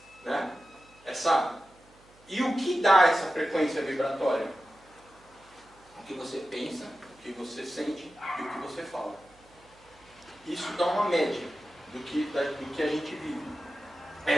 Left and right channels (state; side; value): noise; right; hum, 28 dB below the sound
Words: né? E o que dá essa frequência vibratória? O que você pensa, o que você sente e o que você fala. Isso dá uma média do que a gente vive.